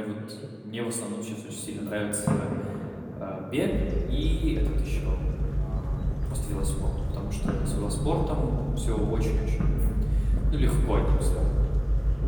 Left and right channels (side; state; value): both; identical; correlation 1.00